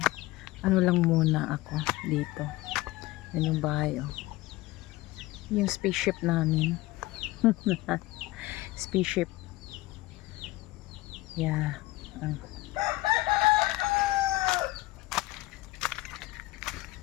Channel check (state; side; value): quieter; right; 19.1 dB